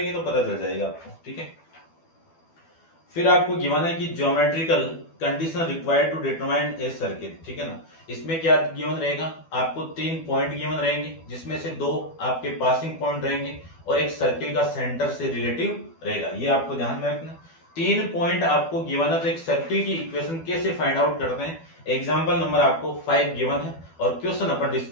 तो पता चल जाएगा आपको, ठीक है। फिर आपको गिवन है कि geometrical condition required to determine a circle, ठीक है ना। इसमें क्या गिवन रहेगा, आपको 3 पॉइंट गिवन रहेंगे, जिसमें से 2 आपके पासिंग पॉइंट रहेंगे और एक सर्किल का सेंटर से रिलेटिव रहेगा। ये आपको ध्यान में रखना। 3 पॉइंट आपको गिवन है, तो एक सर्किल की इक्वेशन कैसे फाइंड आउट करते हैं। एग्जाम्पल नंबर आपको 5 गिवन है और क्वेश्चन अपन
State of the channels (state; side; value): late; right; 12 ms